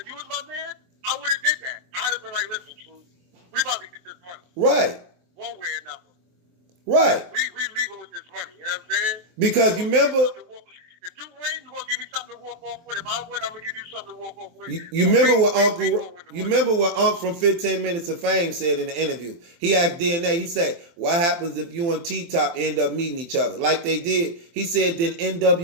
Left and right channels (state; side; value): late; left; 23 ms